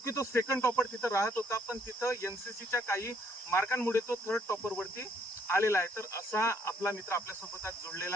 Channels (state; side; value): normal; both; correlation 0.67